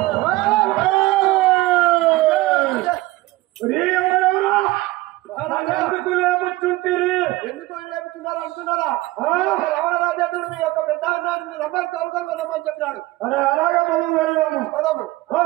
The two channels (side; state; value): left; quieter; 19.2 dB